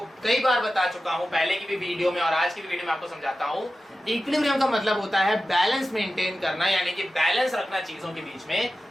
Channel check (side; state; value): both; normal; correlation 0.94